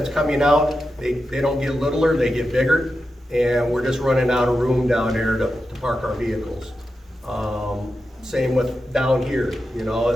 coming out, they don't get littler, they get bigger. And we're just running out of room down there to park our vehicles. Same with down here,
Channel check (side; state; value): both; normal; correlation 0.90